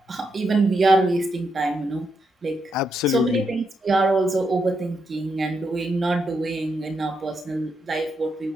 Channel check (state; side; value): normal; both; correlation 0.81